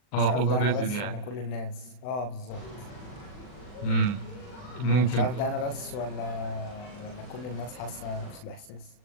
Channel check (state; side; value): late; right; 40 ms